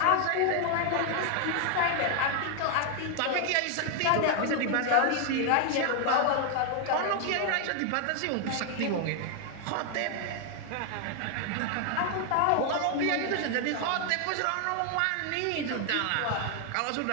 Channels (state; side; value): different; both; correlation 0.00